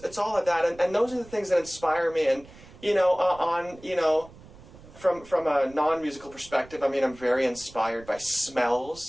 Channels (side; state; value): right; noise; rumble, 21 dB below the sound